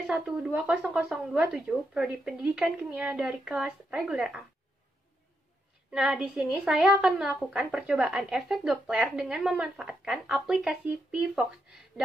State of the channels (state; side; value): normal; both; correlation 0.82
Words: Prodi Pendidikan Kimia dari kelas reguler A. Nah, di sini saya akan melakukan percobaan efek Doppler dengan memanfaatkan aplikasi Pvox